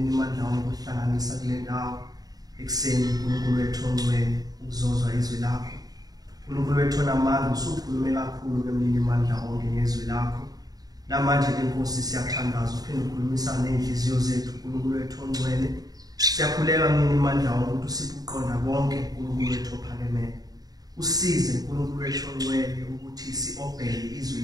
amandla onke ukuhlanganisa kule ndawo ekuseni. uNkulunkulu wethu ongcwele ukuzozwa izwi lakho. uNkulunkulu wethu onamandla usukhulume kakhulu kumnini amandla onke ngezwi lakho. Namanje inkosi siyathandaza uphinde ukhulumisa nenhliziyo zethu. uNkulunkulu wethu ongcwele siyakhuleka umnini amandla onke ukuthi usiphe uqonda konke. uNkulunkulu wethu ophakemeyo usize uNkulunkulu wethu ongcwele ukuthi siobheke izwi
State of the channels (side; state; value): left; late; 0.18 ms